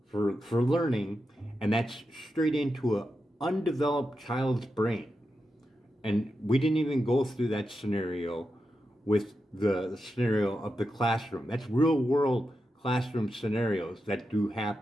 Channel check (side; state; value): both; normal; correlation 0.88